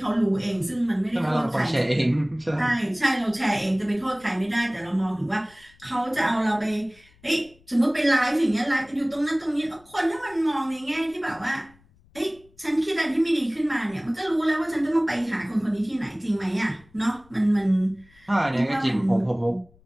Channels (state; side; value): noise; left; rumble, 29 dB below the sound